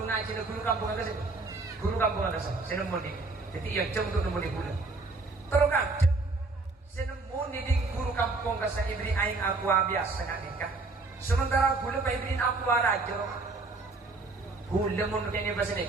ngaji, guru kampung ada sih. Guru kampung ada sih. Saya nemu di. Jadi yang jauh untuk nemu di boleh. Terus kakek. Senemu di guru kampung kasa ibri aing aku biasa nak nikah. Sementara gula pa ibrin aku raja. Gula mo kanya ba sini?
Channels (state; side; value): quieter; left; 3.6 dB